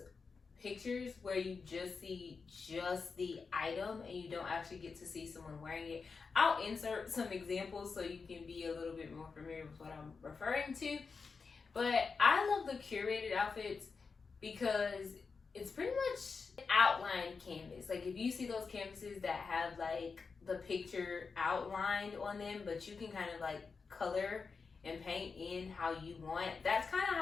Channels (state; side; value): quieter; right; 4.9 dB